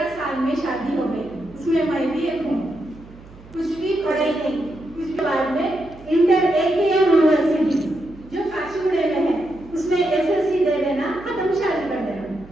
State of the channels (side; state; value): right; noise; hum, 21 dB below the sound